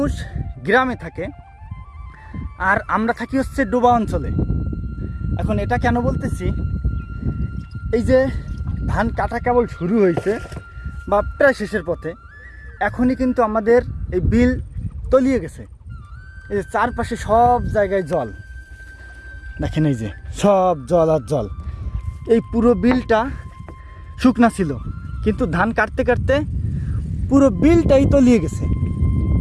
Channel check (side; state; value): both; identical; correlation 1.00